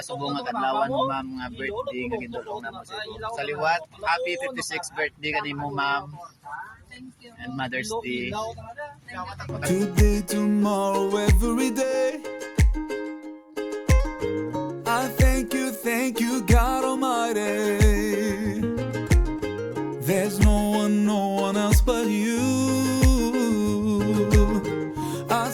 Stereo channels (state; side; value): identical; both; correlation 1.00